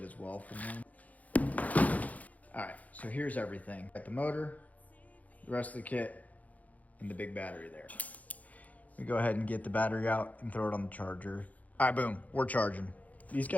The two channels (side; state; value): right; late; 0.074 ms